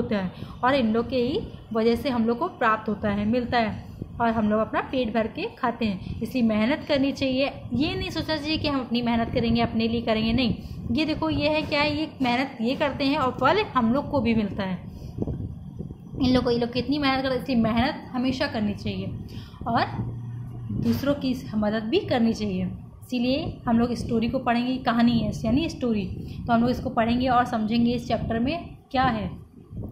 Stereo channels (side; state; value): both; identical; correlation 1.00